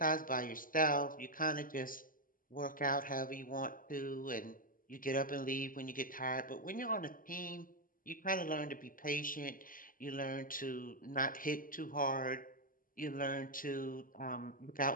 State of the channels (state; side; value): late; right; 0.40 ms